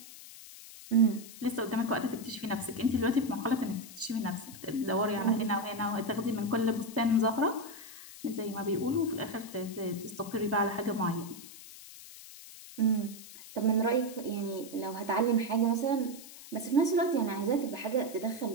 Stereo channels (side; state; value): left; noise; hiss, 16 dB below the sound